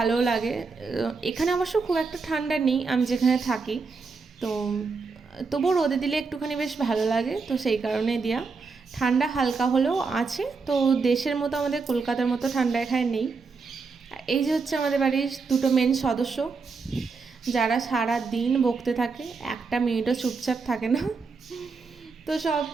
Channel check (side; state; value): left; quieter; 4.6 dB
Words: লাগে। এখানে অবশ্য খুব একটা ঠান্ডা নেই আমি যেখানে থাকি, তো তবুও রোদে দিলে একটুখানি বেশ ভালো লাগে, তো সেই কারণে দেওয়া। ঠান্ডা হালকা হলেও আছে, তো দেশের মতো আমাদের কলকাতার মতো ঠান্ডা এখানে নেই। এই যে হচ্ছে আমাদের বাড়ির দুটো মেন সদস্য, যারা সারা দিন বকতে থাকে, একটা মিনিটও চুপচাপ থাকে না। তো সব